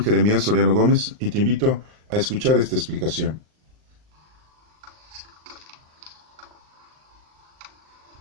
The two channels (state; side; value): late; left; 39 ms